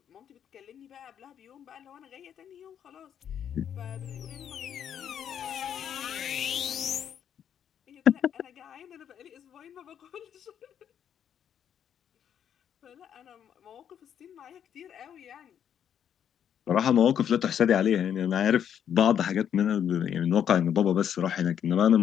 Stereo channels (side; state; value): right; quieter; 9.0 dB